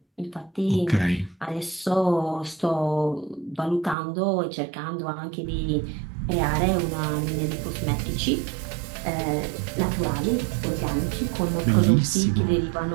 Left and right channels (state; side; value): drops out; left; at 4.0 s